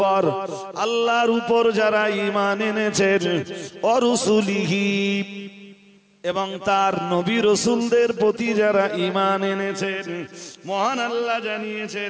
আল্লাহর উপর যারা ঈমান এনেছেন, ওয়া রুসুলিহি, এবং তার নবী রাসূলদের প্রতি যারা ঈমান এনেছেন, মহান আল্লাহ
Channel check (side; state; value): both; identical; correlation 1.00